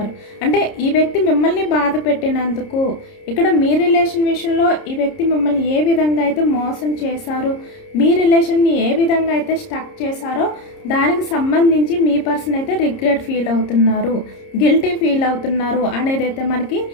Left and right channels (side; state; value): right; late; 30 ms